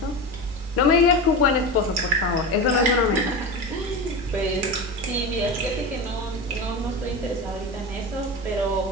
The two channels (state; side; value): normal; both; correlation 0.24